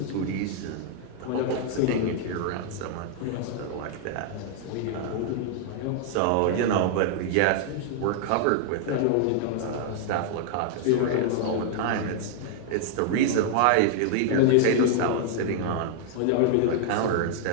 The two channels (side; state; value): both; different; correlation -0.01